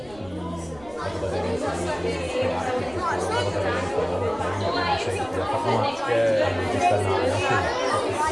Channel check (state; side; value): noise; right; rumble, 23 dB below the sound